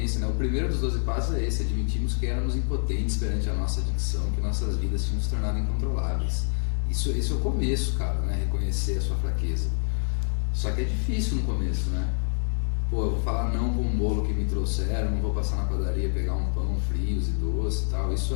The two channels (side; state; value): right; silent; digital silence